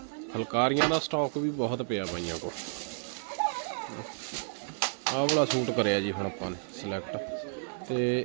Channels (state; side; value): silent; left; digital silence